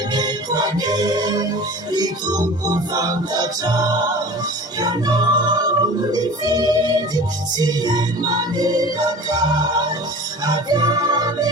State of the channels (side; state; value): both; normal; correlation 0.39